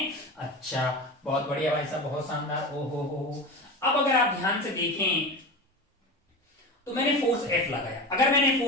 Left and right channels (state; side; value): normal; both; correlation 0.28